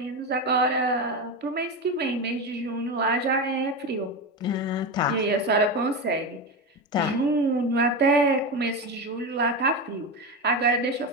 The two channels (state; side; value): normal; both; correlation 0.18